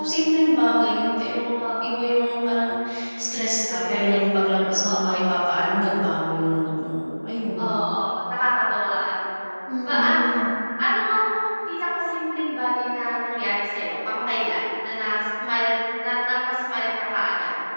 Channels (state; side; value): inverted; both; correlation -1.00